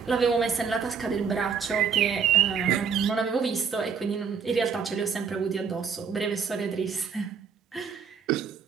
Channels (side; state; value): left; quieter; 6.3 dB